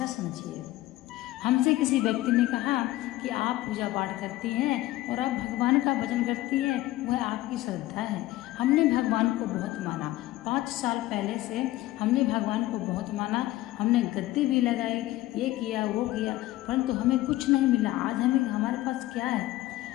समझिए। हमसे किसी व्यक्ति ने कहा कि आप पूजा पाठ करती हैं और आप भगवान का भजन करती हैं, वह आपकी श्रद्धा है। हमने भगवान को बहुत माना, 5 साल पहले से हमने भगवान को बहुत माना, हमने गद्दी भी लगाई, ये किया वो किया, परंतु हमें कुछ नहीं मिला। आज हमारे पास क्या है?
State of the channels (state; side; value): quieter; right; 16.6 dB